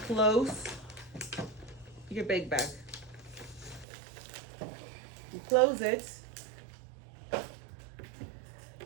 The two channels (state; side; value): drops out; left; at 3.9 s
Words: close your big bag. You close it.